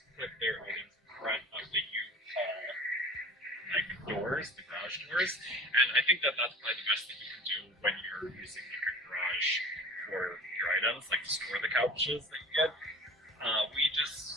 put their items in front of the U-Haul doors, the garage doors, and I think that that's probably the best thing you can do when you're using like a garage for your items, like to store the couches that you get. We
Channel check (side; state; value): both; normal; correlation 0.41